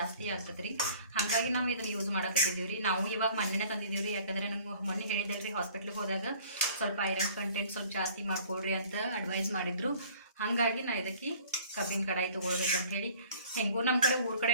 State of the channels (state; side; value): inverted; both; correlation -0.51